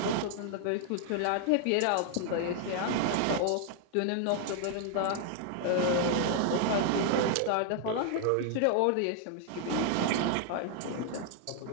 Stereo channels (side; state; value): both; different; correlation 0.00